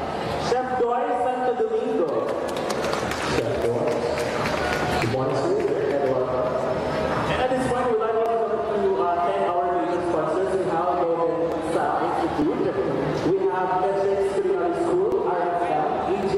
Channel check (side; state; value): both; identical; correlation 1.00